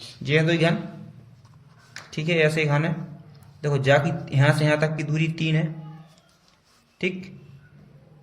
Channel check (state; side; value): identical; both; correlation 1.00